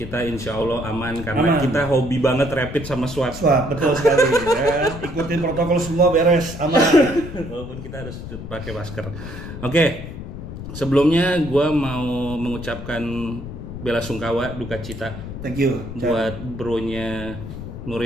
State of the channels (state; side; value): noise; left; rumble, 10 dB below the sound